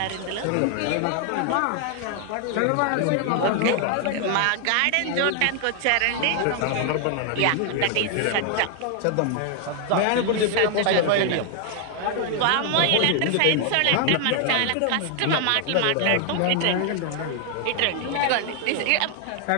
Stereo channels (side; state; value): both; different; correlation 0.00